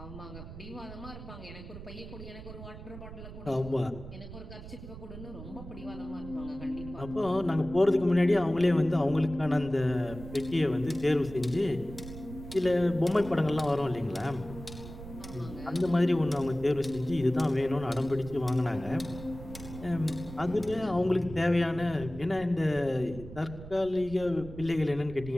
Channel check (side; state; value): right; noise; rumble, 13 dB below the sound